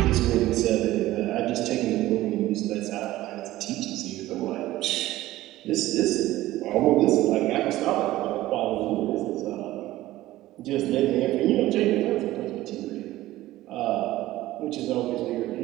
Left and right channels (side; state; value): left; quieter; 16.1 dB